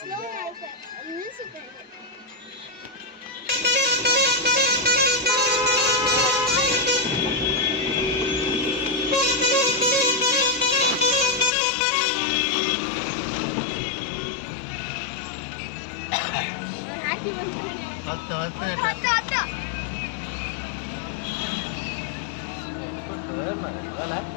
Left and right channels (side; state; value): right; drops out; at 11.5 s